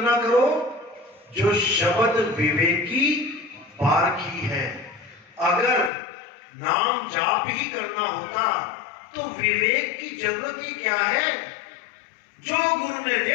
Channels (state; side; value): drops out; right; at 5.9 s